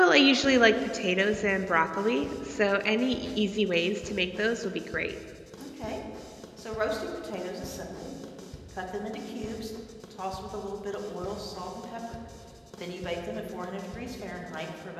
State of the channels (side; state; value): both; identical; correlation 1.00